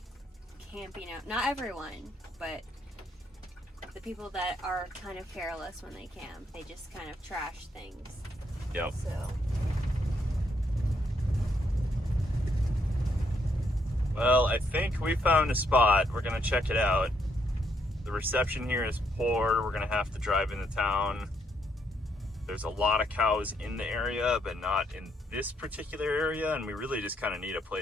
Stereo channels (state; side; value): normal; both; correlation 0.74